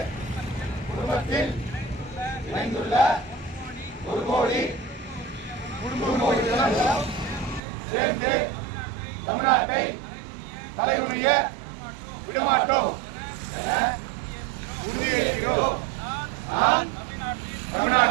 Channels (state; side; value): drops out; left; at 7.6 s